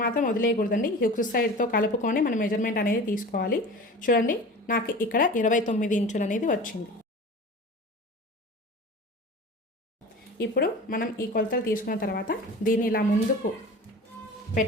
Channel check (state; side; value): normal; both; correlation 0.36